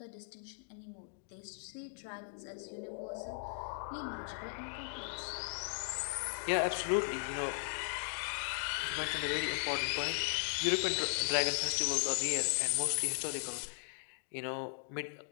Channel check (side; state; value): right; silent; digital silence